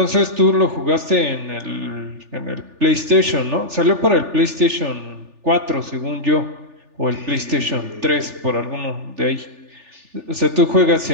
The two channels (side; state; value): left; late; 3.4 ms